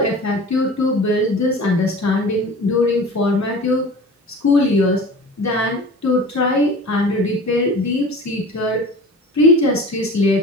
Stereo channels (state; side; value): normal; both; correlation 0.39